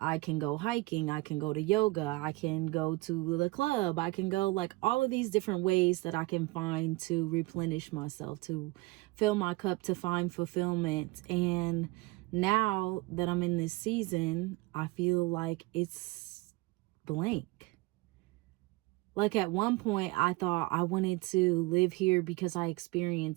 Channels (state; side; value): quieter; left; 21.9 dB